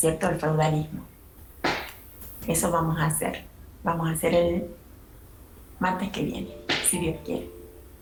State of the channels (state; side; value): identical; both; correlation 1.00